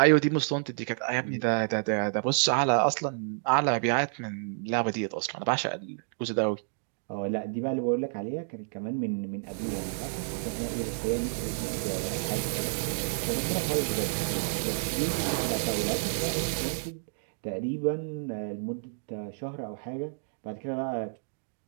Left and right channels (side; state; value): left; silent; digital silence